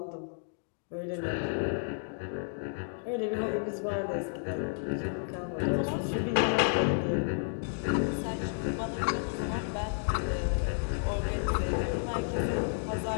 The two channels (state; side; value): silent; right; digital silence